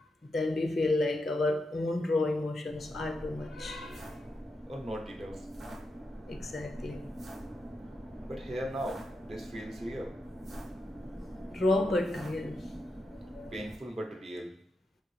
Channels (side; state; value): both; normal; correlation 0.86